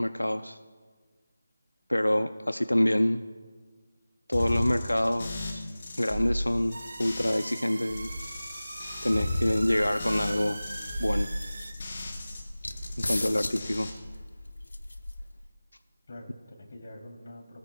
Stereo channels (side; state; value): both; inverted; correlation -0.98